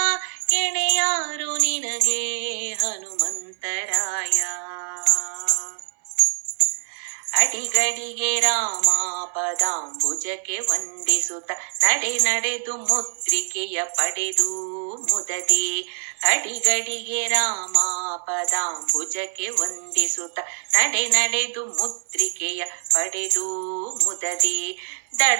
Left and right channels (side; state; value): left; silent; 63 dB below the other